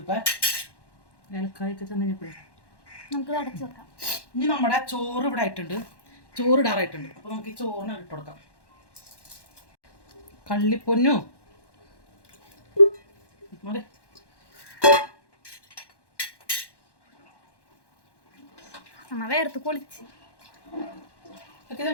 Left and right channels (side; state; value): right; late; 1.1 ms